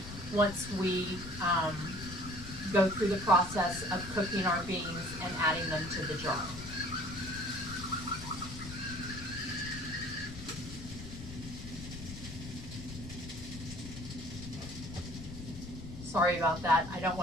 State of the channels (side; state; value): left; noise; rumble, 10 dB below the sound